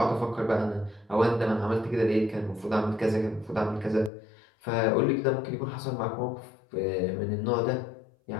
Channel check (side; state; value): right; drops out; at 4.1 s